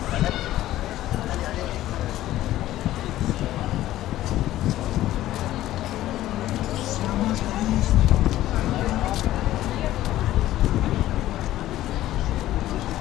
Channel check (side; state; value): right; quieter; 14.4 dB